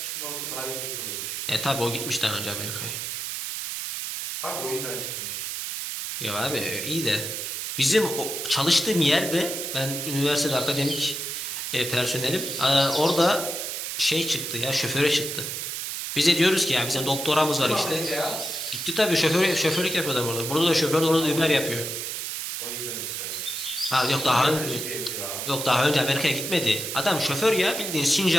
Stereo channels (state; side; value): noise; right; hiss, 4 dB below the sound